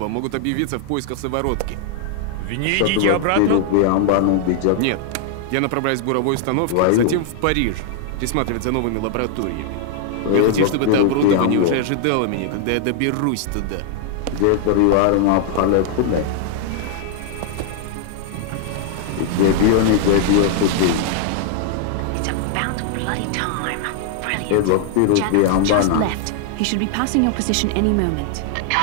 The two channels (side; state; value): both; different; correlation 0.00